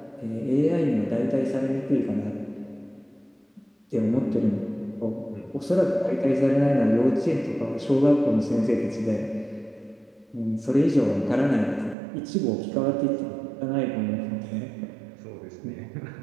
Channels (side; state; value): left; drops out; at 12.0 s